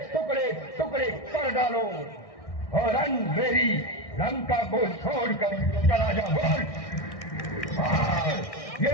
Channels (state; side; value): late; right; 1.6 ms